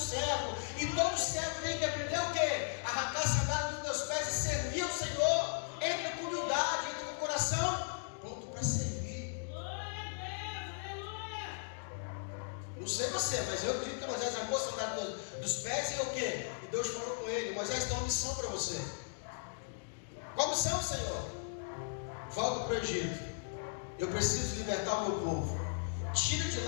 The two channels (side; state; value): right; silent; digital silence